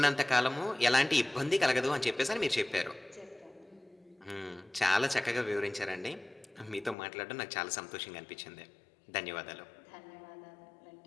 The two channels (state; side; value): drops out; right; at 7.0 s